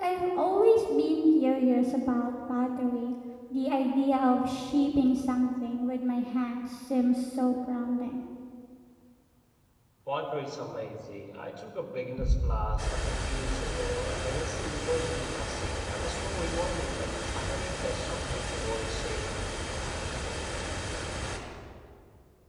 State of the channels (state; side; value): identical; both; correlation 1.00